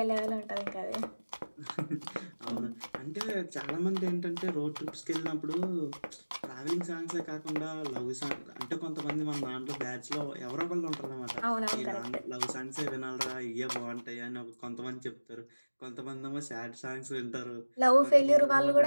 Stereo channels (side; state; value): both; inverted; correlation -1.00